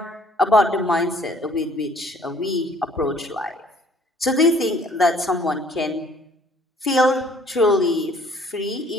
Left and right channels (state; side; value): normal; both; correlation 0.58